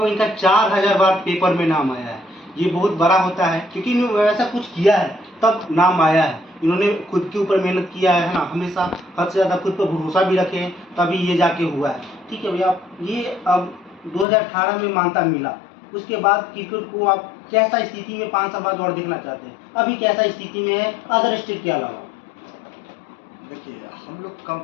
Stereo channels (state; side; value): drops out; right; at 14.2 s